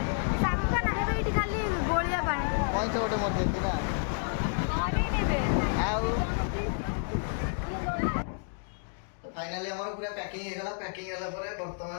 सामुका ना हेबे इठी खाली गोलिया पाए पैसा गोटे मर देछि ना अरे नेबे आउ तो फाइनली हमर पूरा पैकिंग हे गला पैकिंग होला परे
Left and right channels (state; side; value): silent; right; 58 dB below the other